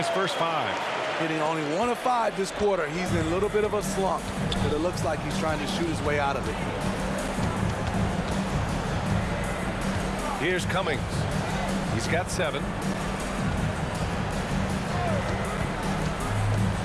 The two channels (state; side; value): identical; both; correlation 1.00